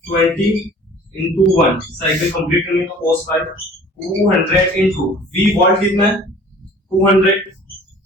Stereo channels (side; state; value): both; normal; correlation 0.48